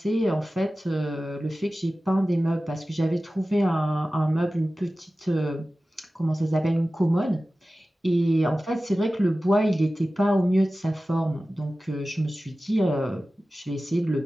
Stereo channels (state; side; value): normal; both; correlation 0.96